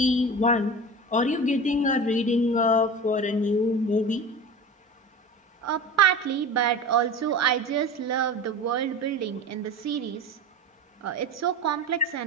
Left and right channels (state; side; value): normal; both; correlation 0.32